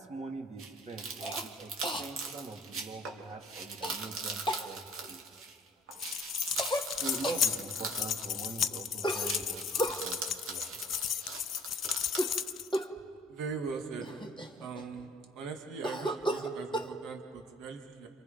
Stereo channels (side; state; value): both; normal; correlation 0.53